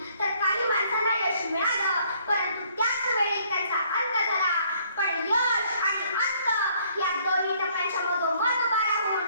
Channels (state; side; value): inverted; both; correlation -0.64